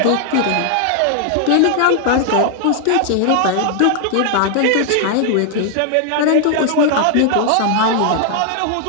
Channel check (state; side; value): different; both; correlation 0.00